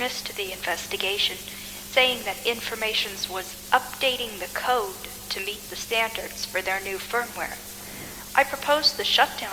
the investigation, saying that Informations was updating the code to meet the standards for their new firmware. I proposed the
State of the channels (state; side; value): identical; both; correlation 1.00